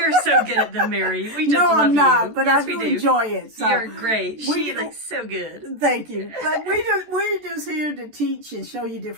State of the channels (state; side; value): late; left; 14 ms